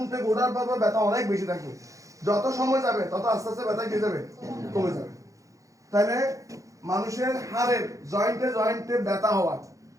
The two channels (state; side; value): late; left; 0.16 ms